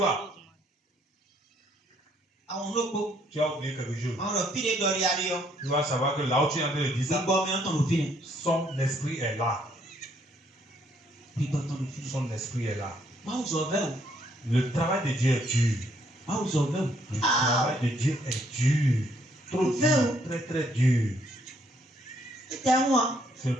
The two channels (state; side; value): normal; both; correlation 0.68